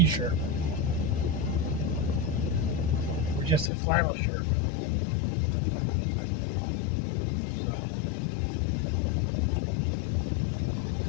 Or just a flannel shirt. So.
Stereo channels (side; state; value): right; drops out; at 3.7 s